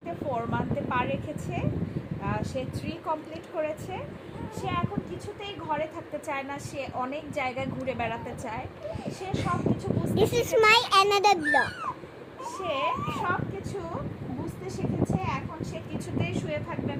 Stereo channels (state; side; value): identical; both; correlation 1.00